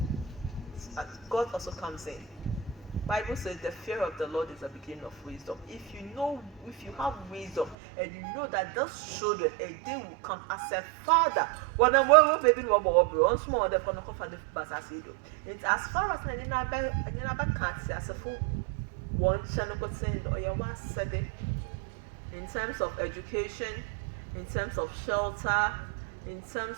God also comes in. Bible says the fear of the Lord is the beginning of wisdom. If you have wisdom and you know that those children, a day will come as a father. When I'm baby once more the it's as far as I never can't say as a full one channel or your one said in terms of education, in terms of shelter, in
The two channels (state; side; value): drops out; left; at 7.8 s